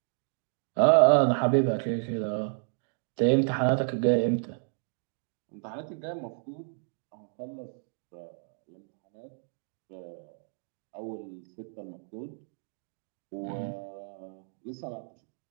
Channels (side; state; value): left; silent; 57 dB below the other